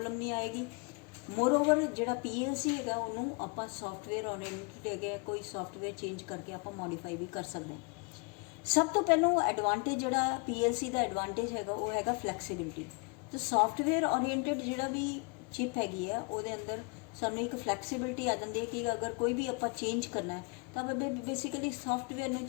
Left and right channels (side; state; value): right; quieter; 32.5 dB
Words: ਨਹੀਂ ਆਏਗੀ। ਮੋਰਓਵਰ ਜਿਹੜਾ PLC ਹੈਗਾ ਉਹਨੂੰ ਆਪਾਂ ਸੌਫਟਵੇਅਰ ਓਰੀਐਂਟਡ ਹੈਗਾ, ਕੋਈ ਸੌਫਟਵੇਅਰ ਚੇਂਜ ਕਰਕੇ ਆਪਾਂ ਮੋਡੀਫਾਈ ਵੀ ਕਰ ਸਕਦੇ ਹਾਂ। ਸਭ ਤੋਂ ਪਹਿਲਾਂ ਐਡਵਾਂਟੇਜ ਜਿਹੜਾ PLC ਦਾ ਐਡਵਾਂਟੇਜ ਹੈਗਾ ਉਹ ਹੈਗਾ ਫਲੈਕਸੀਬਿਲਿਟੀ। ਤੇ ਸੌਫਟਵੇਅਰ ਓਰੀਐਂਟਡ ਜਿਹੜਾ ਵੀ ਚਿਪ ਹੈਗੀ ਆ ਉਹਦੇ ਅੰਦਰ ਸਾਨੂੰ ਇੱਕ ਫਲੈਕਸੀਬਿਲਿਟੀ ਆ ਜਾਂਦੀ ਹੈ ਕਿ ਅਗਰ ਕੋਈ ਵੀ ਆਪਾਂ ਚੇਂਜ ਕਰਨਾ ਹੈ ਤਾਂ ਆਪਾਂ ਬੇਸਿਕਲੀ ਸੌਫਟਵੇਅਰ ਨੂੰ